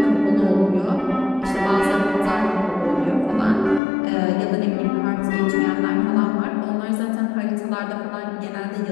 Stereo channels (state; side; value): drops out; right; at 3.8 s